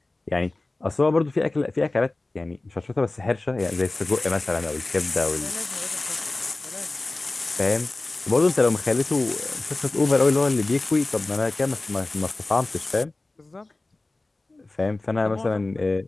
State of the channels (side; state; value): right; quieter; 3.0 dB